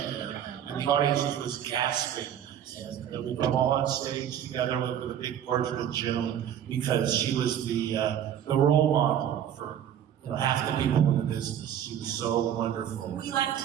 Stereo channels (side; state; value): left; quieter; 9.9 dB